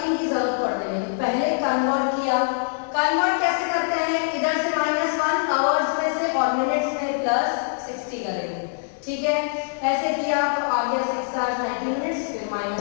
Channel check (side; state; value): right; silent; digital silence